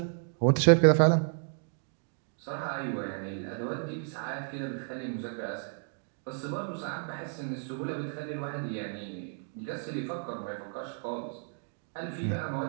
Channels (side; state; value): left; silent; 56 dB below the other